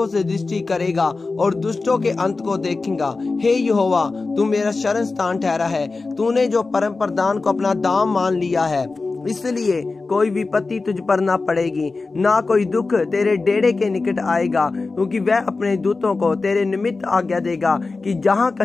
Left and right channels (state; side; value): quieter; right; 3.8 dB